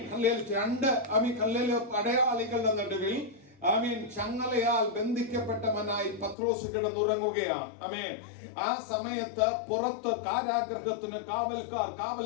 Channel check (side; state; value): right; drops out; at 6.4 s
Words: 2 പടയാളികളുടെ നടുവിൽ ചങ്ങലയാൽ ബന്ധിക്കപ്പെട്ടവനായി പത്രോസ് കിടന്നുറങ്ങുകയാണ്. ആ സമയത്ത് പുറത്ത് കാരാഗ്രഹത്തിന് കാവൽക്കാർ കാവൽ